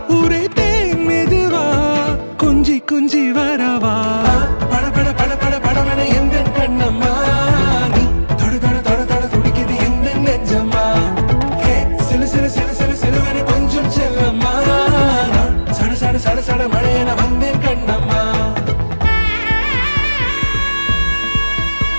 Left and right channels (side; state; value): both; inverted; correlation -1.00